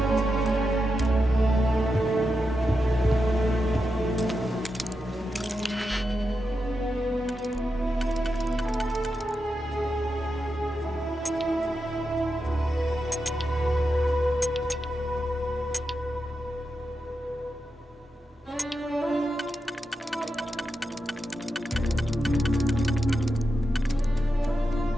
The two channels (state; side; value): normal; both; correlation 0.88